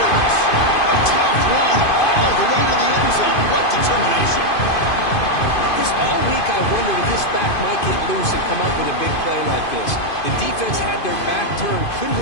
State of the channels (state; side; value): late; right; 2.5 ms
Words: A tough run all the way to the end zone. What determination. This all week I wondered if this back might get loose and come up with a big play like this. The defense had their back turned, couldn't